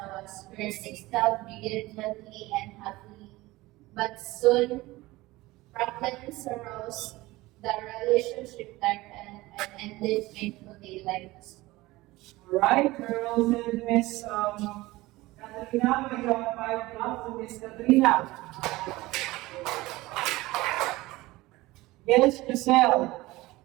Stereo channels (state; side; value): quieter; left; 19.6 dB